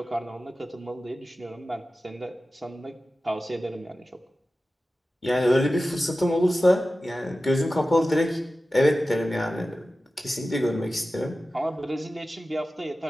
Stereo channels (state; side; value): normal; both; correlation 0.94